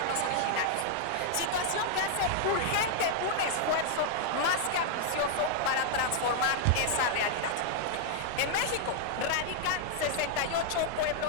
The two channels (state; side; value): different; both; correlation -0.01